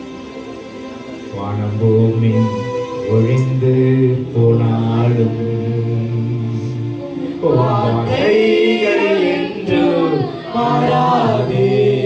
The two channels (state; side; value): identical; both; correlation 1.00